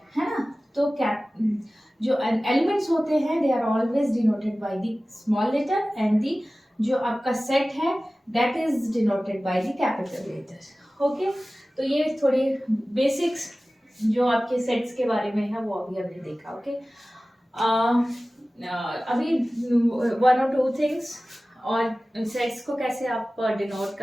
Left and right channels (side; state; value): both; normal; correlation 0.97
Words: है ना। तो जो एलिमेंट्स होते हैं they are always denoted by the small letter and the जो आपका सेट है that is denoted by the capital letter. Okay, तो ये थोड़ी बेसिक्स जो आपके सेट्स के बारे में है वो अभी हमने देखा। ओके, अभी 1 or 2 थिंग्स और सेट्स को कैसे आप डिनोट